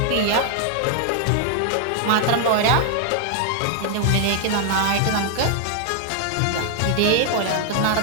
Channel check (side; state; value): both; different; correlation 0.00